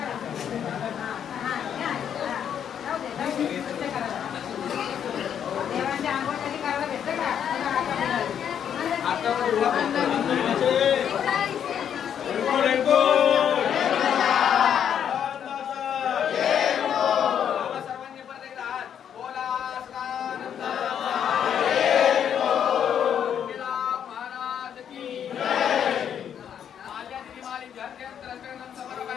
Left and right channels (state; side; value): quieter; right; 8.8 dB